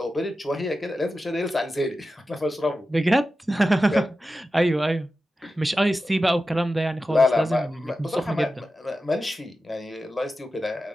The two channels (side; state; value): both; normal; correlation 0.92